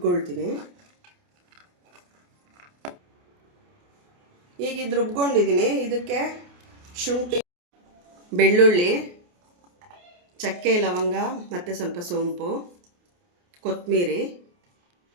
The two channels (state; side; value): late; left; 28 ms